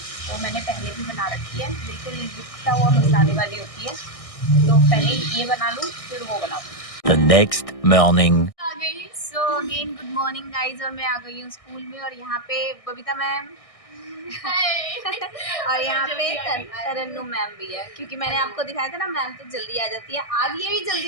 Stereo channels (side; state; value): right; late; 1.6 ms